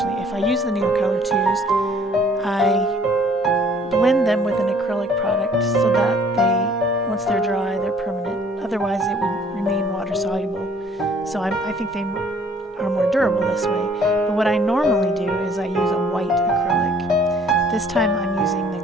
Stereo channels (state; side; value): normal; both; correlation 0.57